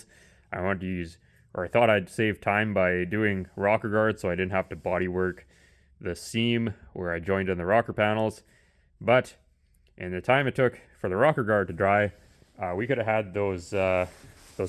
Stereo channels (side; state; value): both; identical; correlation 1.00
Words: I wanted to use, or I thought I'd save time by doing rocker guard so I didn't have to body work the seam where I joined in the rocker panels. But in the time it took for the rocker guard to dry, we could have had those